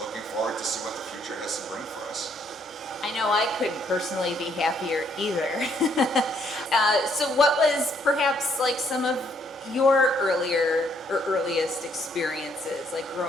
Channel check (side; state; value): both; normal; correlation 0.69